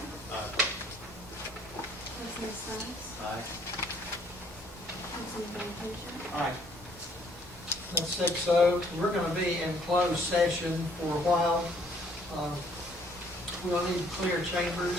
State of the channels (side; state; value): both; normal; correlation 0.62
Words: Aye. Councilman Stiles. Aye. Councilman Van Huzen. Aye. That's 6-0. We're going to be in closed session for a while. We'll need to clear chambers